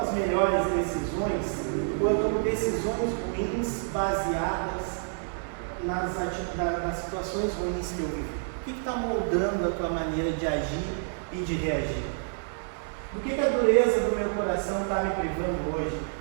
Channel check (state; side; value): silent; left; digital silence